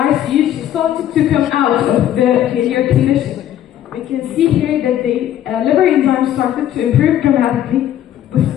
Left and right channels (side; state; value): right; quieter; 11.5 dB